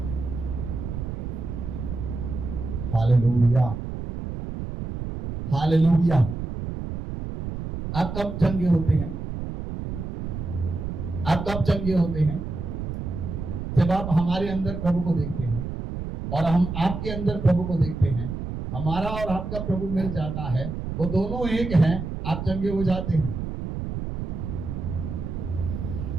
Hallelujah, hallelujah. आप कब चंगे होते हैं? आप कब चंगे होते हैं? जब आप हमारे अंदर प्रभु को देखते हैं और हम आपके अंदर प्रभु को देखते हैं, हमारा और आपका प्रभु मिल जाता है, वो दोनों एक हैं, आप चंगे हो जाते हैं।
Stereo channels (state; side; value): noise; right; rumble, 5 dB below the sound